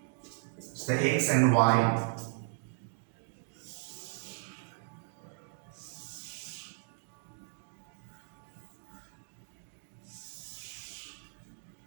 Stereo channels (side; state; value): left; silent; 54 dB below the other